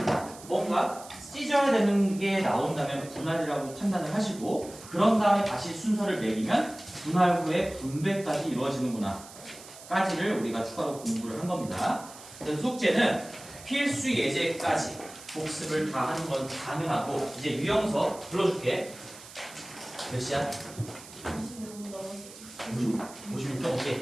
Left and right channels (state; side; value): noise; right; hiss, 17 dB below the sound